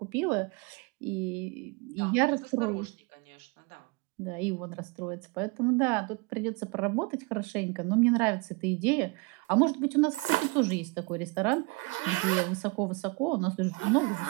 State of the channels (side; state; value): left; quieter; 26.5 dB